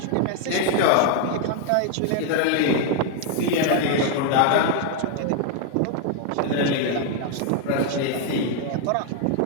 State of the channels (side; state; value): both; different; correlation 0.00